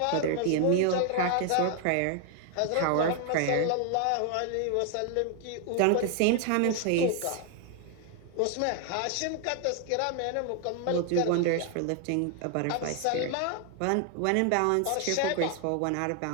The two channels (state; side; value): different; both; correlation 0.00